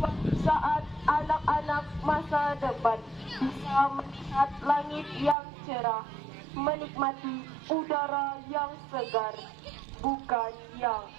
saat anak-anak masa depan bisa melihat langit yang cerah, menikmati udara yang segar, bukan yang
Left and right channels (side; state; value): left; drops out; at 5.4 s